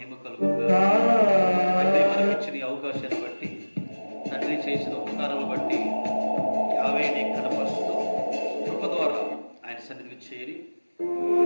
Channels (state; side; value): inverted; both; correlation -1.00